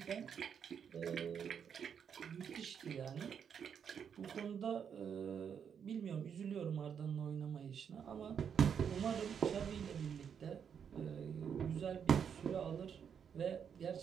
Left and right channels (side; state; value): left; quieter; 7.5 dB